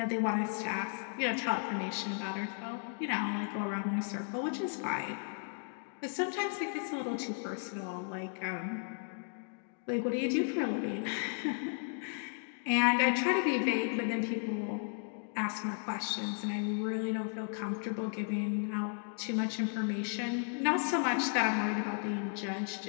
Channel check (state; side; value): silent; right; 55 dB below the other